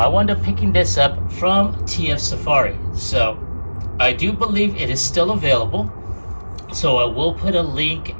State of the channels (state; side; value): inverted; both; correlation -1.00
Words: wound up picking this up from TF Safari, so I do believe it is still available. So I will put a link